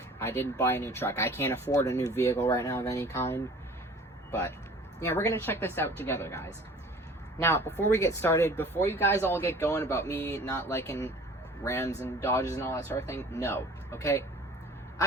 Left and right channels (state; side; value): normal; both; correlation 0.47